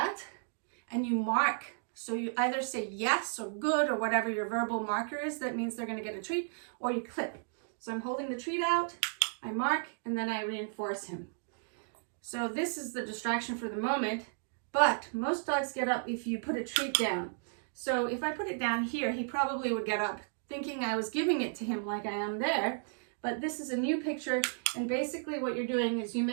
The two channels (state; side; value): silent; left; digital silence